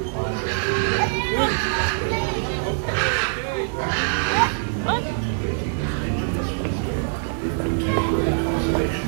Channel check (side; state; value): left; silent; digital silence